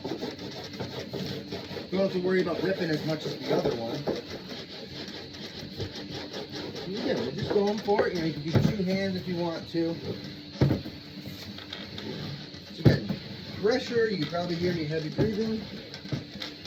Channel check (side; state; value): both; identical; correlation 1.00